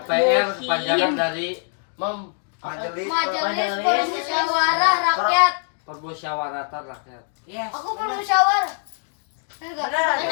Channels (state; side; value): silent; right; 55 dB below the other